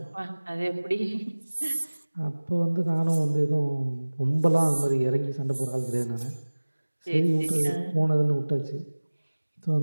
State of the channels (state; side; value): inverted; both; correlation -1.00